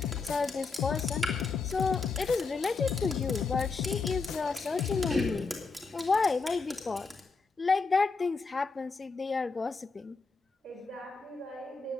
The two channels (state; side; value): quieter; right; 4.4 dB